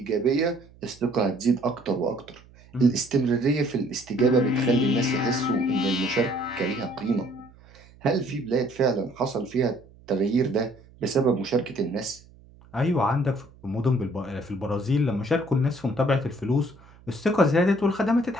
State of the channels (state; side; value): noise; right; hum, 25 dB below the sound